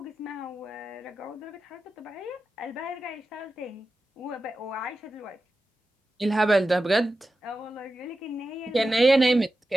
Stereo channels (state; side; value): normal; both; correlation 0.92